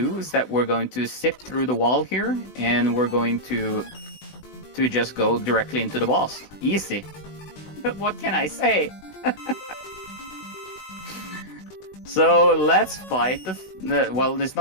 is that we're going to zip through the wall here, and we're going to just go directly into the boss. Easy. But what can I say? So let's fight well, it's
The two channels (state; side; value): late; right; 20 ms